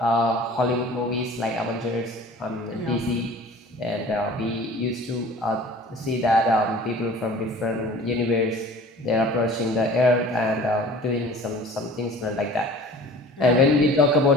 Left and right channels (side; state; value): both; normal; correlation 0.45